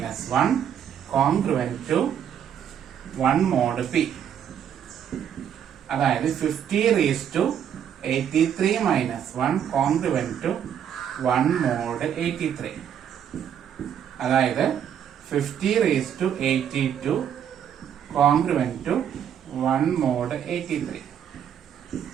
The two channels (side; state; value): left; quieter; 9.0 dB